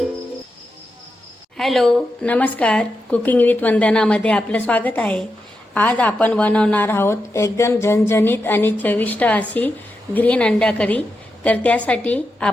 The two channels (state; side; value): normal; both; correlation 0.87